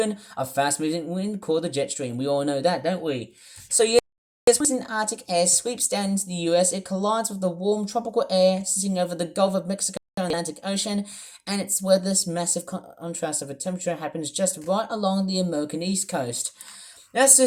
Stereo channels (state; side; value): identical; both; correlation 1.00